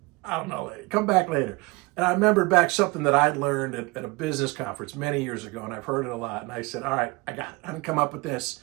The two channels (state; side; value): quieter; left; 24.9 dB